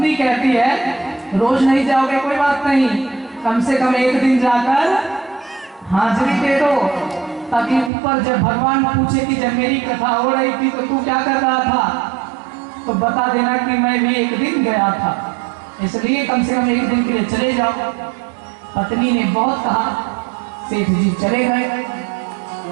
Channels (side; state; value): left; drops out; at 7.9 s